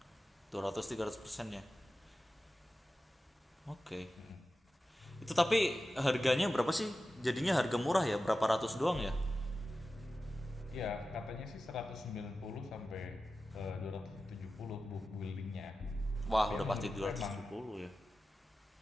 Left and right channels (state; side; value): normal; both; correlation 0.94